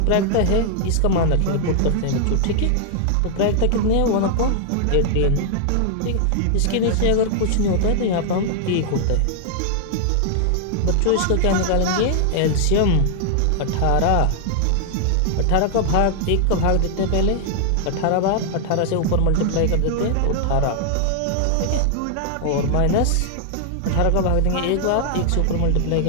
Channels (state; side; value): different; both; correlation 0.00